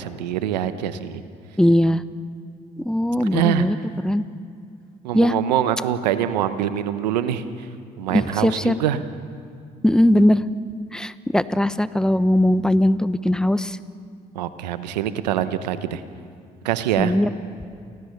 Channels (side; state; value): both; normal; correlation 0.74